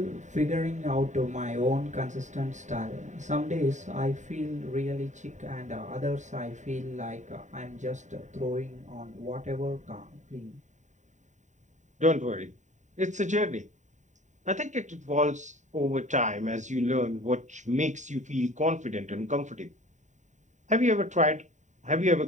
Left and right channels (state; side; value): late; left; 0.35 ms